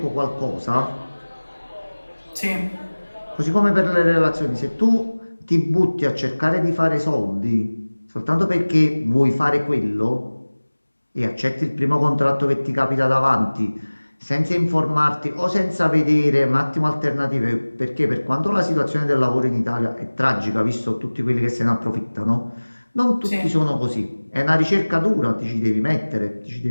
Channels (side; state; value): both; inverted; correlation -1.00